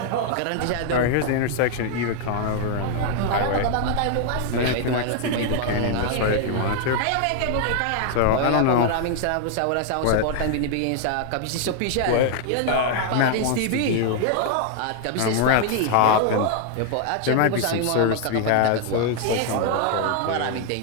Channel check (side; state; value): both; different; correlation 0.00